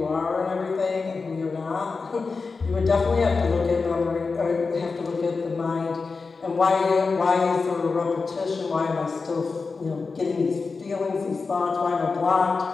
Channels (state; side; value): quieter; right; 4.4 dB